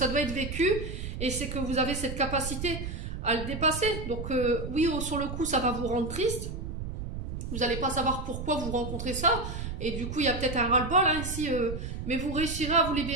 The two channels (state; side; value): noise; right; rumble, 6 dB below the sound